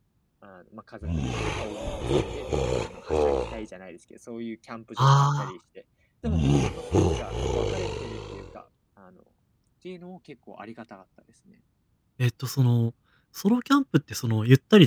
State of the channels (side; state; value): both; identical; correlation 1.00